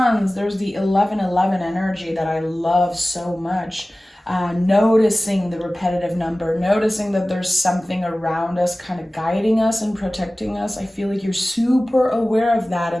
there's the 1111 energy that I love so much. Noticing the repetitive number, noticing that there's something around us kind of guiding us and protecting us. I feel like you're super aware of that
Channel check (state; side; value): normal; both; correlation 0.97